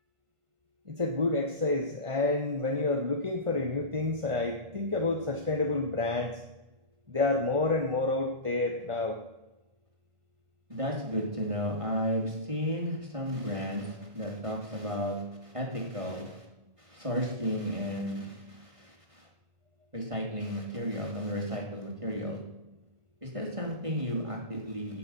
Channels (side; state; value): left; late; 1.5 ms